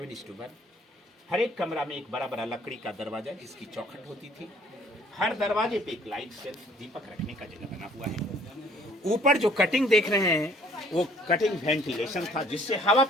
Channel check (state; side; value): normal; both; correlation 0.58